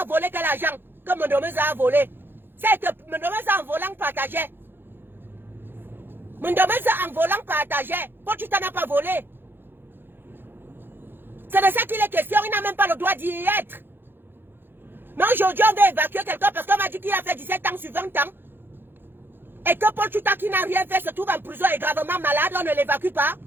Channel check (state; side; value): late; left; 0.10 ms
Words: a volé quel argent que Mondomez a volé. C'est que Mondomez en volant partageait. Mondomez en volant partageait. Paul Chouta n'a pas volé. C'est de ça qu'il est question. Il n'a même pas le droit d'y être. Mais aujourd'hui, on veut évacuer quelqu'un parce qu'on m'a dit qu'il a fait 17 ans sur 20 ans. Et que Paul Chouta qui n'a rien fait se trouve en prison et gravement malade, on ne l'évacue pas.